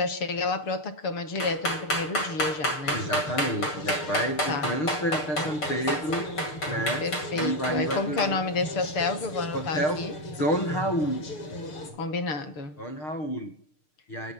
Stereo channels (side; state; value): right; late; 6.6 ms